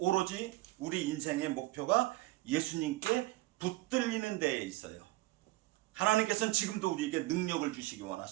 우리 인생의 목표가 예수님께 붙들리는 데에 있어요. 하나님께서는 지금도 우리에게 능력을 주시기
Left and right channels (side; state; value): left; quieter; 19.0 dB